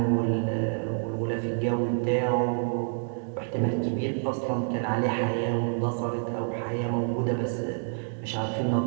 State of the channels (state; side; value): silent; left; 59 dB below the other